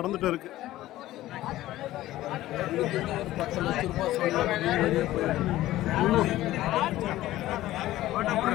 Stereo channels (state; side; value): quieter; right; 15.4 dB